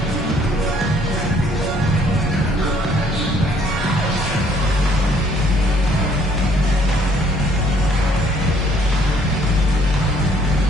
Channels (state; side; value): normal; both; correlation 0.63